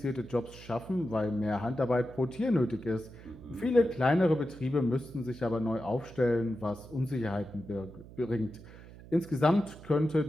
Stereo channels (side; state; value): right; noise; hum, 18 dB below the sound